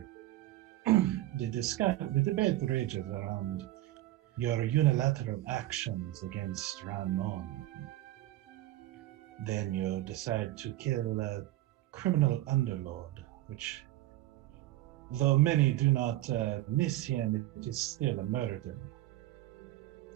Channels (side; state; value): left; quieter; 15.7 dB